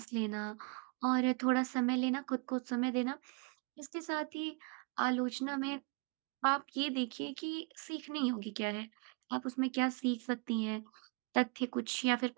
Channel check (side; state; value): left; quieter; 32.4 dB